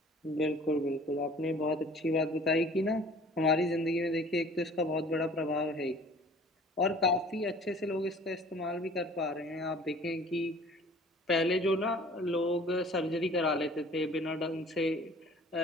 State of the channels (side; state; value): both; normal; correlation 0.49